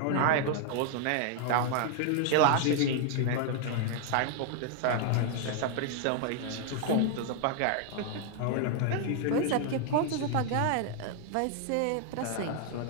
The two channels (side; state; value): both; different; correlation 0.00